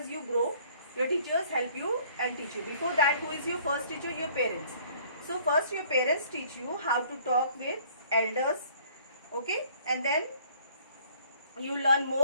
you grow, your teachers help you and teach you. Before that, who is your first teacher? Your parents. So first your parents teach you how to talk with elders, okay, and then you learn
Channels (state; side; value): inverted; both; correlation -0.56